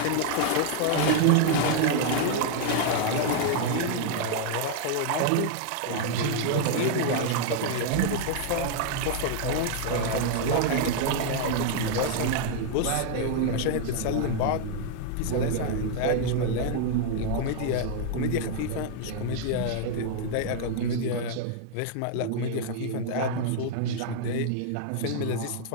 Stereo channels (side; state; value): both; different; correlation -0.01